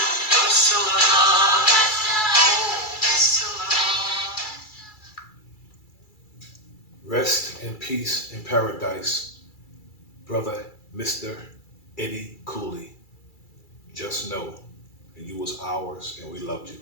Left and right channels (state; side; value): late; right; 2.3 ms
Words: Priscilla, Priscilla. Rest in peace in paradise, brother Mr. Eddie Cooley. Just know that you was ours and we loved you.